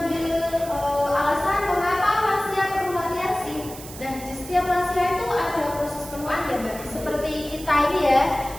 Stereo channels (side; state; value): right; noise; hiss, 14 dB below the sound